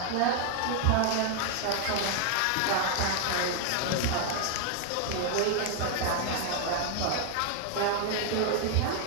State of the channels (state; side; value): different; both; correlation 0.00